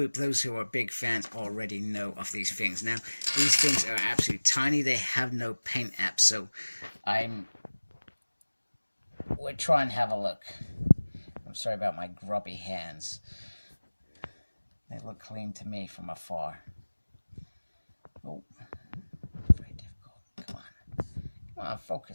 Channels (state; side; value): inverted; both; correlation -1.00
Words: Those who are big fans already know of these things. Now, these things are absolutely tiny. They have no paint app, so we'll try and have a look. I'm sorry about my grubby hands. They look clean to me from afar. Oh, very difficult. Come on. Come on,